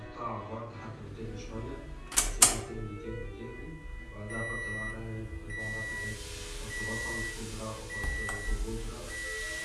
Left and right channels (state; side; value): identical; both; correlation 1.00